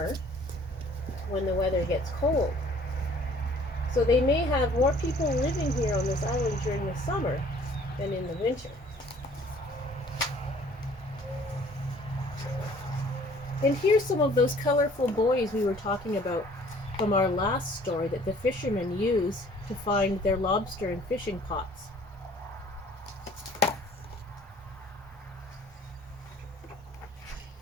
when the weather gets cold. So they may have more people living here on this island during the summer than in the winter. And here's some of those colorful buoys we were talking about from our last story that the fishermen use to find their lobster and fishing pots.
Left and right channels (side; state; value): both; normal; correlation 0.55